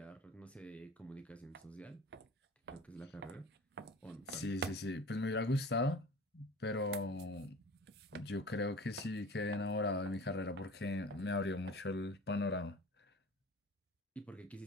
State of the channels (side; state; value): both; normal; correlation 0.40